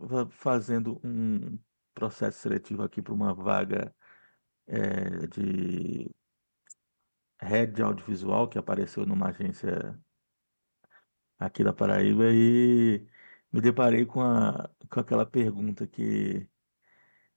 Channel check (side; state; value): both; inverted; correlation -1.00